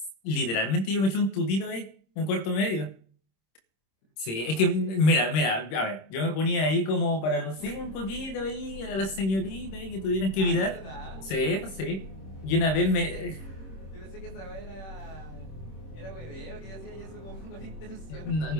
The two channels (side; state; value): right; late; 26 ms